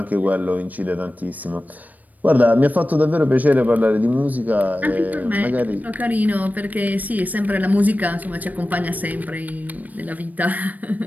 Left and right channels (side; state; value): left; late; 0.079 ms